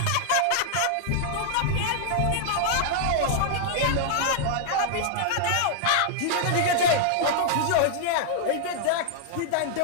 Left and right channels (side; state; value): both; different; correlation -0.01